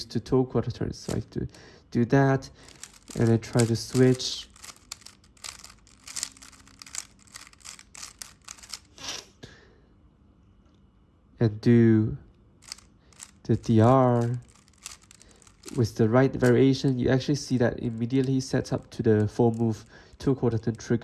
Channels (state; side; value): identical; both; correlation 1.00